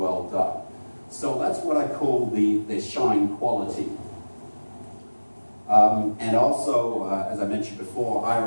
done? So that's what I call the shine quality. And also, as I mentioned before,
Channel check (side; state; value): both; inverted; correlation -1.00